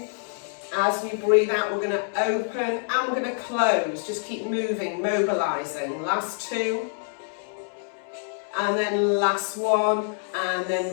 As we breathe out, we're going to open and we're going to close. Just keep moving, mobilizing. Last two. And then last one. And then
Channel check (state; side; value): silent; right; 60 dB below the other